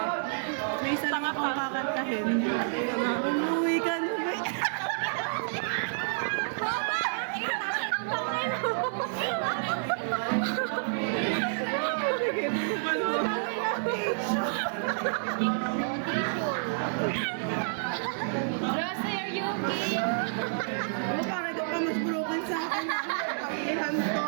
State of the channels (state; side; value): silent; left; 58 dB below the other